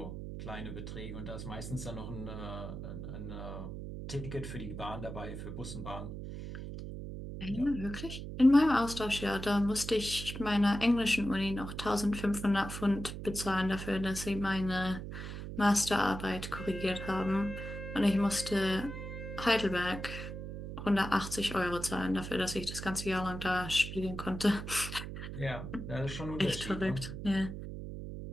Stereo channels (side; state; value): right; noise; hum, 8 dB below the sound